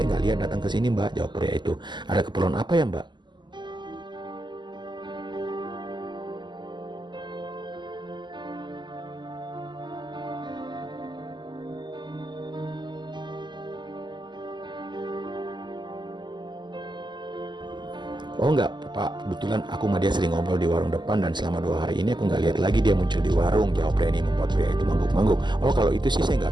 nggak lihat datang ke sini Mbak, jawab pria itu. Ada keperluan apa ya Mbak? Oh enggak Pak, kebetulan aku sama dia sering ngobrol di warung depan dan selama 2 hari ini aku nggak lihat lagi dia muncul di warung, jawab Reni membuat pria itu mangguk-mangguk. Oh kalau itu sih saya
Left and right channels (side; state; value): left; late; 0.21 ms